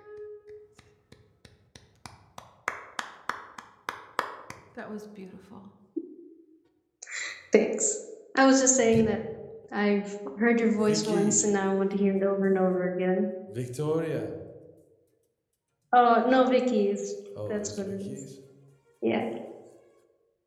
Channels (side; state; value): both; identical; correlation 1.00